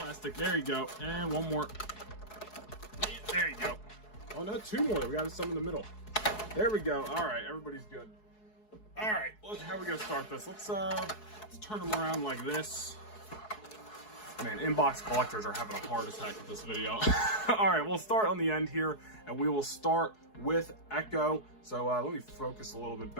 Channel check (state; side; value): late; right; 4.7 ms